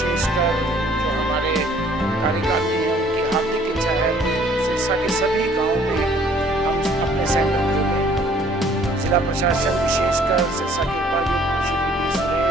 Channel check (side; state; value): both; normal; correlation 0.58